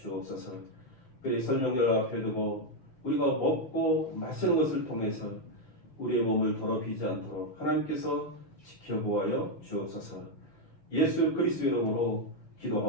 그의 설명절 앞에 두고 우리가 먹고 마시는 것을 통해서 우리의 몸을 더럽히지 않도록 하나님께서 지켜보아여 주옵소서. 예수 그리스도의 이름으로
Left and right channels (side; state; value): right; late; 6.6 ms